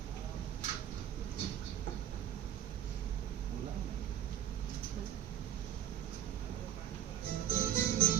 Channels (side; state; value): left; quieter; 10.8 dB